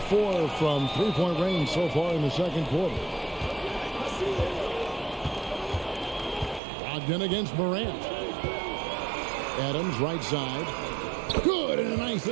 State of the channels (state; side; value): drops out; left; at 6.6 s